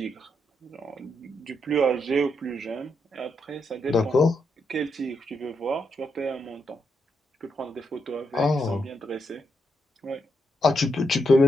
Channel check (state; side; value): normal; both; correlation 0.81